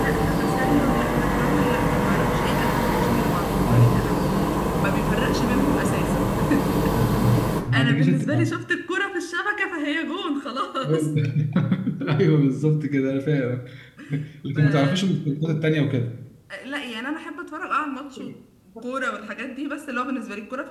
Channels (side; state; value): both; identical; correlation 1.00